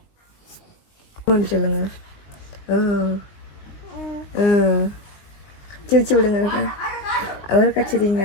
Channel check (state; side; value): late; right; 20 ms